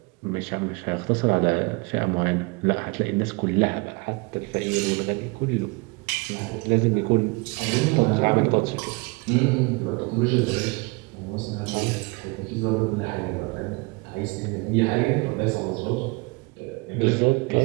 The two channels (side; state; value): left; quieter; 28.0 dB